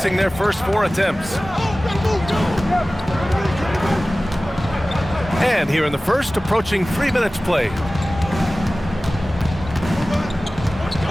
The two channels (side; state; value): both; normal; correlation 0.97